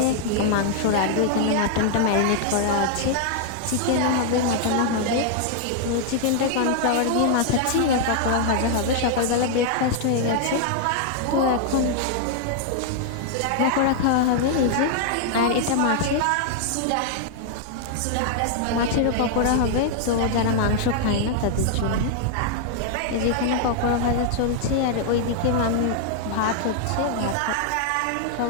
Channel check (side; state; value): both; different; correlation 0.00